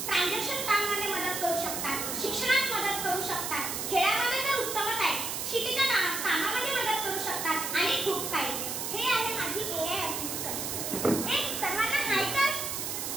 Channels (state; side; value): noise; right; hiss, 3 dB below the sound